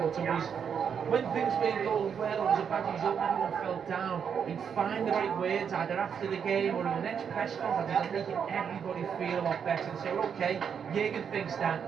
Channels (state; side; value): quieter; left; 7.3 dB